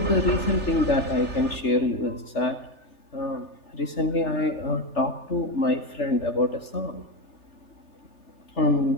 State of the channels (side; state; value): right; late; 3.4 ms